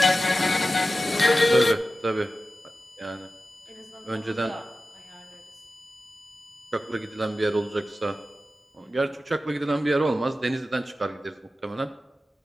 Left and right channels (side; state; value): both; normal; correlation 0.94